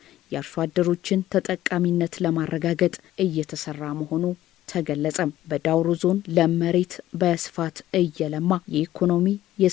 የአርሶ አደሮችን ተጠቃሚነት ለማረጋገጥ እየተሰራ መሆኑ ተገለጸ። በዳውሮ ዞን ለመሬት በስፋት እየለማ የኢኮኖሚ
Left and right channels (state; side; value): quieter; right; 14.0 dB